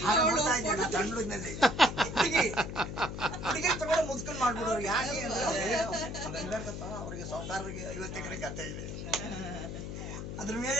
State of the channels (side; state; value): left; noise; hum, 6 dB below the sound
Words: ತಮಿಳಿನಲ್ಲಿ ಹುಡುಗಿ ತಗೊಂಡು ಮುದ್ಕೊಂಡು ಮಾಡ್ಬಿಡೋರು. ಯಾಕೆ ಅವ್ರಿಗೆ ಸಾವುಕಾರರಿಗೆ 50 ಎಕರೆ ಗದ್ದೆ ಇದೆ, ಅದ್ರ